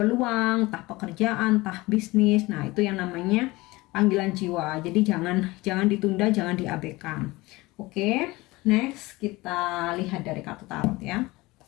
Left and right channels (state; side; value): quieter; right; 21.2 dB